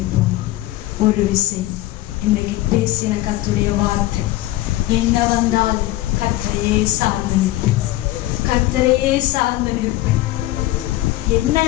ஒரு விசை இன்னைக்கு பேசின கர்த்தருடைய வார்த்தை, என்ன வந்தாலும் கர்த்தரையே சார்ந்து நிற்பேன், கர்த்தரையே சார்ந்து நிற்பேன். என்ன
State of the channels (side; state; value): right; quieter; 16.4 dB